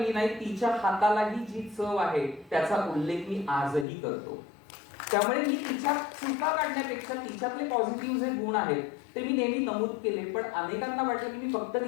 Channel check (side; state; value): right; drops out; at 3.9 s